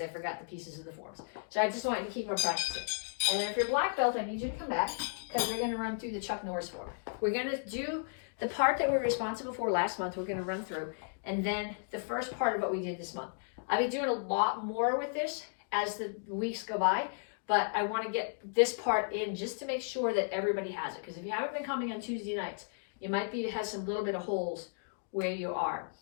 I forgot the pieces of the forms. So I just want you to keep on practicing. And then if you're black belt, I need you to come back because we're going to run through the Chuck Norris form. We're going to do the part that we were responsible for last month. We're going to run through. And then the first part of what we did this month. I'll be doing a lot more with this as the weeks go by. But I want to get this part in just to make sure that everybody has it. Because if you haven't been coming on Tuesday nights, you might be has some little bit of holes where you are.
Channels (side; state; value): right; silent; digital silence